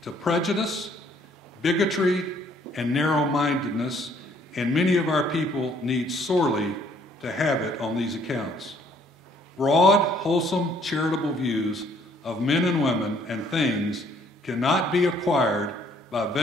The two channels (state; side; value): normal; both; correlation 0.63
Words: to prejudice, bigotry, and narrow-mindedness, and many of our people need sorely to have it on these accounts. Broad, wholesome, charitable views of men and women and things cannot be acquired by